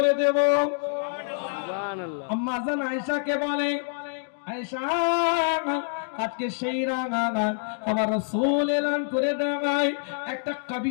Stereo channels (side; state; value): right; silent; digital silence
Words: দেব। সুবহানাল্লাহ। আম্মা জান আয়েশাকে বলে, আয়েশা আজকে সেই রাত আমার রাসূল এলান করে দেয়, একটা